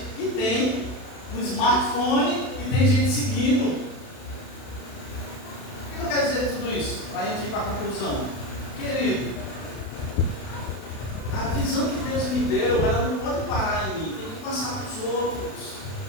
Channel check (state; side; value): late; right; 32 ms